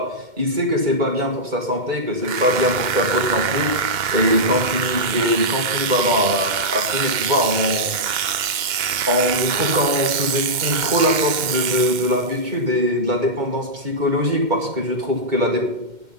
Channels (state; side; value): late; left; 2.1 ms